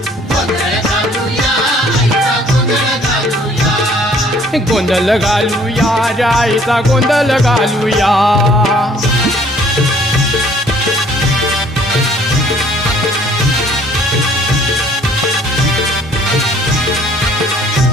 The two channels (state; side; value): normal; both; correlation 0.58